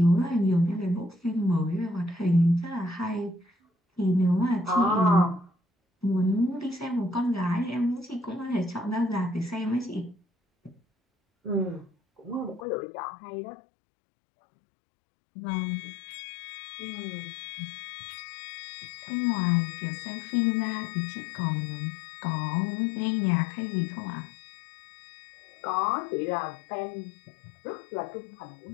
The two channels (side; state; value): right; drops out; at 12.7 s